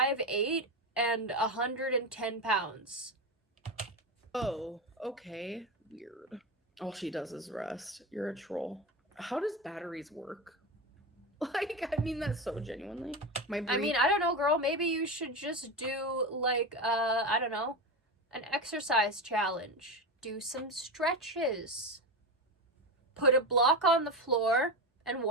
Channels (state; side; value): normal; both; correlation 0.18